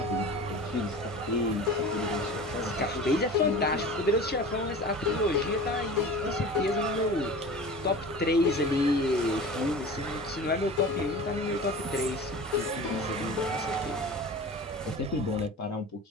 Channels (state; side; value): normal; both; correlation 0.37